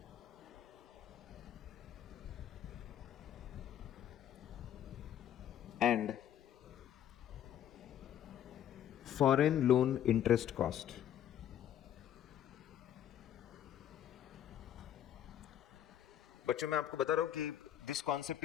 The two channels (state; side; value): quieter; right; 10.7 dB